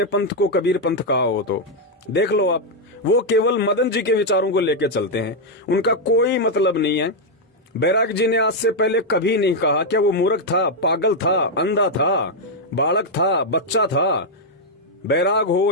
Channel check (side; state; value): both; normal; correlation -0.01